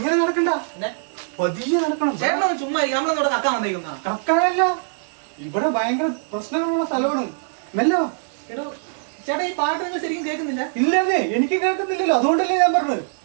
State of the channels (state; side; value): silent; left; 64 dB below the other